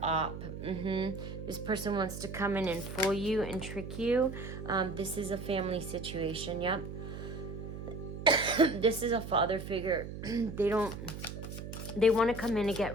op. This person wants to come in and fool you and trick you. This is a family situation. Yep. This is a father figure. They want to come in and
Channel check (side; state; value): right; noise; hum, 9 dB below the sound